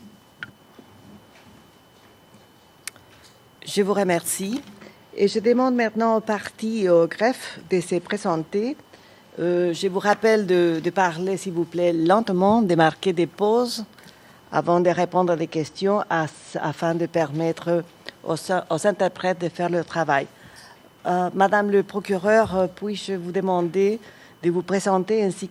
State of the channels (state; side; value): identical; both; correlation 1.00